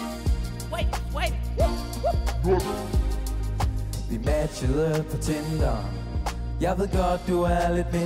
Swipe. Vi matchede på Tinder. Jeg ved godt du er lidt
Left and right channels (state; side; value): identical; both; correlation 1.00